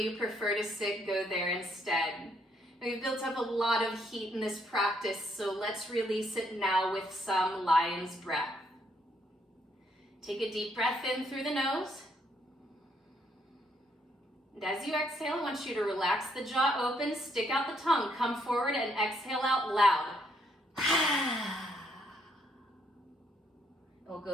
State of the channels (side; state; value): both; normal; correlation 0.72